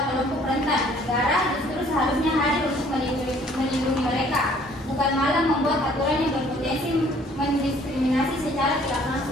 kelompok rentan. Negara justru seharusnya hadir untuk melindungi mereka, bukan malah membuat aturan yang berpotensi mendiskriminasi secara tidak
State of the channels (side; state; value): both; normal; correlation 0.58